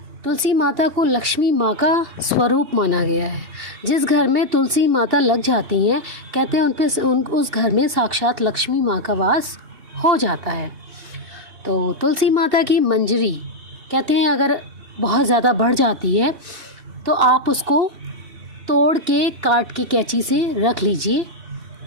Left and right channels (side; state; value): left; late; 2.6 ms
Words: तुलसी माता को लक्ष्मी माँ का स्वरूप माना गया है। जिस घर में तुलसी माता लग जाती हैं, कहते हैं उस घर में साक्षात लक्ष्मी माँ का वास हो जाता है। तो तुलसी माता की मंजरी कहते हैं अगर बहुत ज़्यादा बढ़ जाती है तो आप उसको तोड़ के काट के कैंची से रख लीजिए